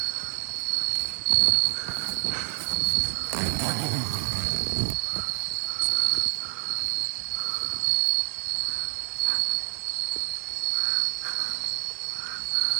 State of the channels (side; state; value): left; silent; 60 dB below the other